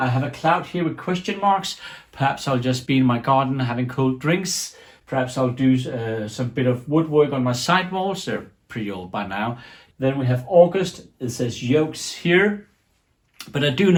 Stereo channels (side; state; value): both; identical; correlation 1.00